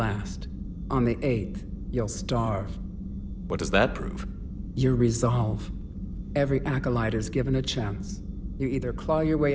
On the 8th, you'll starve. What does that prove? Your resolve. Every acolyte is given a chance. You either claw your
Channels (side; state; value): both; identical; correlation 1.00